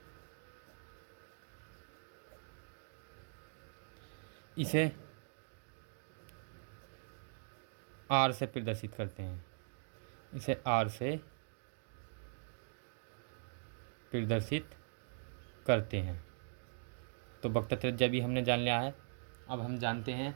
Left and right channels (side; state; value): left; silent; digital silence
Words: इसे आर से प्रदर्शित करते हैं, इसे आर से प्रदर्शित करते हैं। तो वक्रता त्रिज्या भी हमने जान लिया है। अब हम जानते हैं